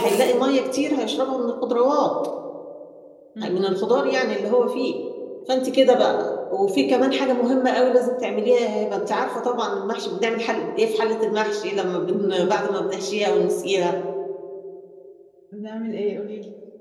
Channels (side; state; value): both; identical; correlation 1.00